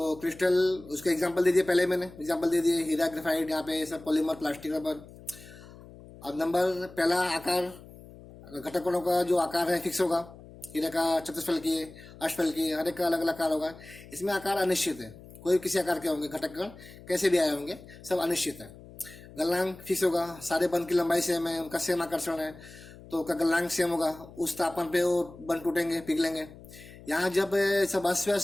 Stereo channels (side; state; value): left; noise; hum, 19 dB below the sound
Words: क्रिस्टल, उसका एग्जांपल दे दिए, पहले मैंने एग्जांपल दे दिए, हीरा, ग्रेफाइट, यहाँ पे सब पॉलीमर, प्लास्टिक, रबर। अब नंबर पहला, आकार, घटक कणों का जो आकार है फिक्स होगा, हीरे का चतुष्फल की, अष्टफल की, हर एक का अलग अलग आकार होगा। इसमें आकार अनिश्चित है, कोई किसी आकार के होंगे, घटक कण कैसे भी आए होंगे, सब अनिश्चित है। गलनांक फिक्स होगा, सारे बंद की लंबाई सेम है, उनका सेम आकर्षण है, तो उसका गलनांक सेम होगा, उस तापमान पे वो बंद टूटेंगे, पिघलेंगे। यहाँ जब सब अस्त